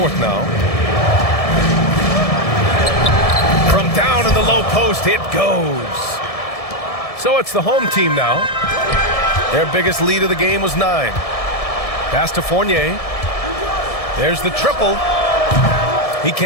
now. From down in the low post, it goes. So it's the home team now. Their biggest lead of the game was 9. Pass to Fournier. There's the triple. He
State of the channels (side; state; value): right; late; 1.7 ms